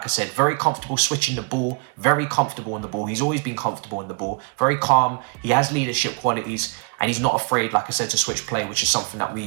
I said, very comfortable switching the ball, very comfortable on the ball. He's always been comfortable in the ball, very calm. He has leadership qualities, and he's not afraid, like I said, to switch play, which is something that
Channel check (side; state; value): left; quieter; 36.7 dB